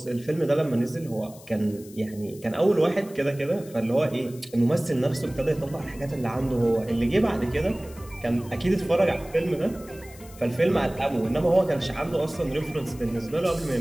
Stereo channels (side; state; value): left; noise; hiss, 21 dB below the sound